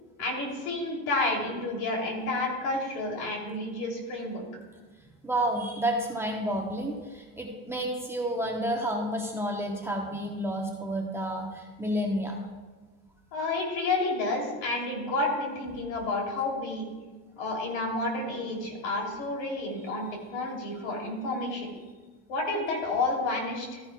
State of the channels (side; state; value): both; normal; correlation 0.21